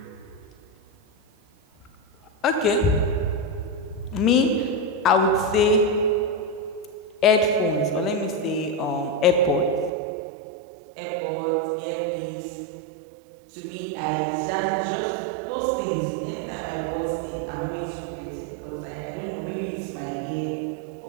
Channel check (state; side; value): drops out; left; at 9.9 s